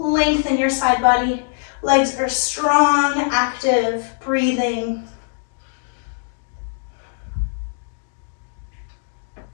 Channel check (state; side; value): silent; right; digital silence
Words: in your side body. Legs are strong, active, breathing.